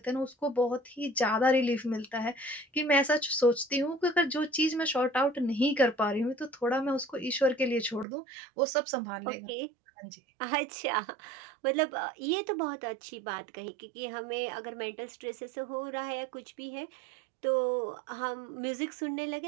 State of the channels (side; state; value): left; drops out; at 8.1 s